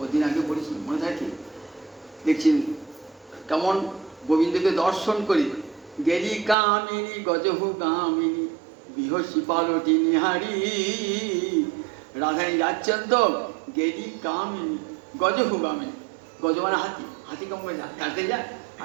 ওদিন আগে পড়েছি, মনে থাকে। দেখছি কেমন গোবিন্দকে দর্শন করি, গেলি কামিনী গজহু গামিনী বিহসী পালটি নিহারি। রাধারানী যাচ্ছেন তো, গেলি কামিনী গজহু গামিনী, গজ মানে হাতি, হাতি কম করে যাতে যায়,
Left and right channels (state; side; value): drops out; left; at 6.6 s